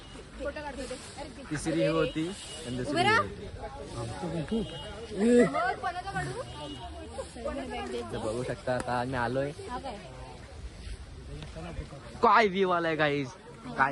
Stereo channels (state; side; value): identical; both; correlation 1.00